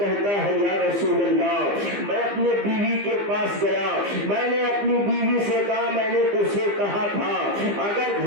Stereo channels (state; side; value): late; left; 15 ms